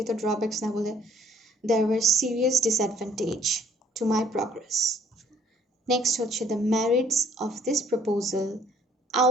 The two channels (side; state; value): both; normal; correlation 0.60